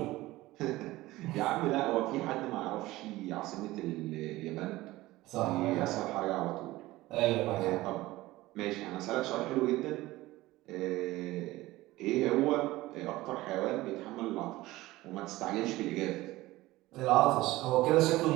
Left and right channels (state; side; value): quieter; left; 18.2 dB